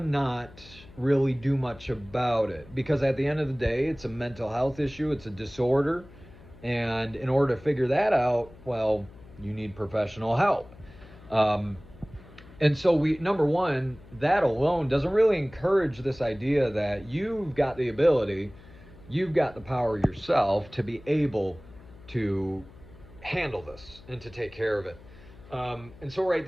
really do much about it, because at the end of the day, it's a mental health issue, it's a disorder, and in order to figure that out, well, you need professional help. And so number one, that alone doesn't really encourage this idea that you've got the ability, you've got the power yourself to be able to handle this and to take care of it. And so right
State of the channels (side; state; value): left; noise; hum, 21 dB below the sound